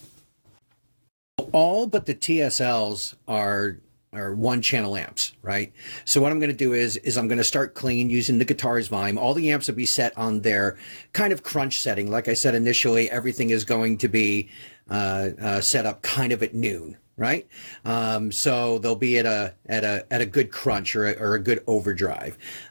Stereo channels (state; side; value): inverted; both; correlation -1.00